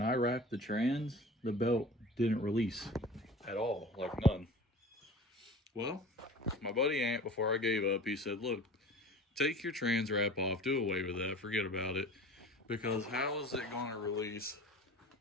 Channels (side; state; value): both; normal; correlation 0.40